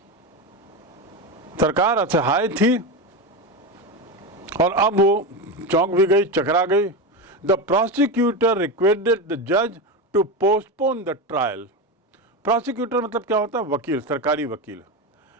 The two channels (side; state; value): both; normal; correlation 0.17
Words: सरकार असहाय थी और अब वो चौंक भी गई, चकरा गई। द प्रोसिक्यूटर रिक्वेस्टेड द जज to postpone the trial. Prosecutor मतलब क्या होता है? वकील, सरकारी वकील।